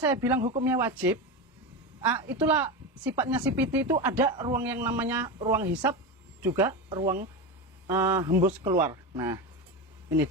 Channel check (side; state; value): both; normal; correlation 0.19